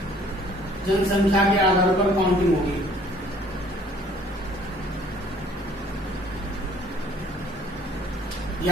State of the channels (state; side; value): normal; both; correlation 0.56